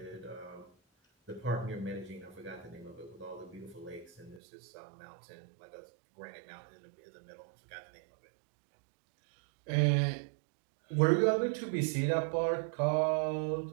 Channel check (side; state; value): left; drops out; at 4.4 s